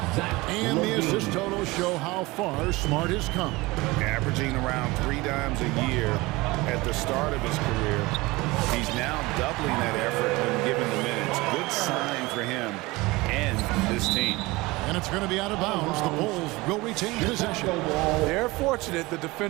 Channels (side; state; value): left; quieter; 21.9 dB